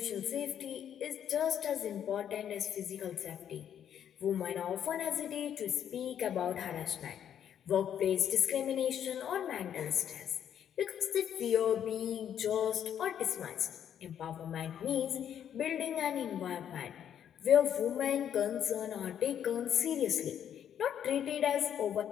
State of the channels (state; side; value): quieter; right; 9.4 dB